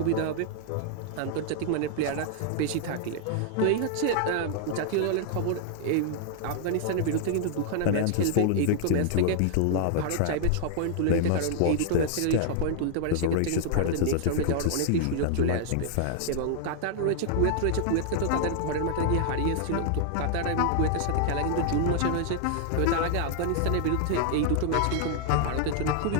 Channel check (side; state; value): both; different; correlation 0.00